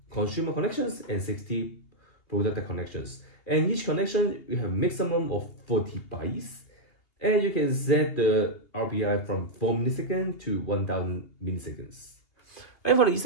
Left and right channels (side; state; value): right; late; 2.8 ms